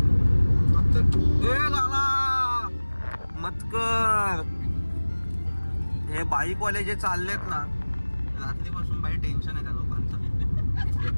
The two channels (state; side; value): inverted; both; correlation -1.00